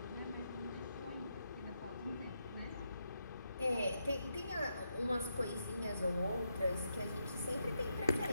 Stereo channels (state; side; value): inverted; both; correlation -0.83